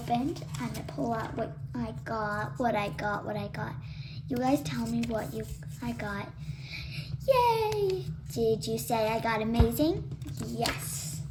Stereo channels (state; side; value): identical; both; correlation 1.00